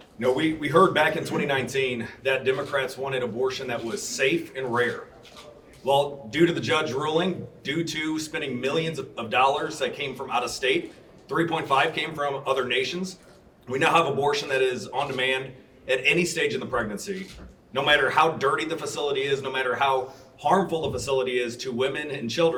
No, we heard back in 2019 that Democrats wanted abortion that was safe and rare. Well, due to the judge ruling, due to spending millions of dollars that came from out of state, 3.5 came from other nations, we now have abortion that is on demand at any stage in the pregnancy. No matter how dirty the facility is, no matter how harmful the facility is to women and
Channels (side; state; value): both; identical; correlation 1.00